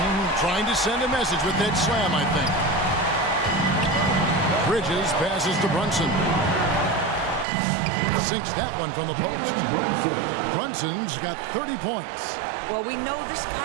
Trying to send a message with that slam, I think. Bridges passes to Brunson. Sinks that one from the post. Brunson's got 30 points. Well, we know this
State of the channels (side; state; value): left; drops out; at 7.5 s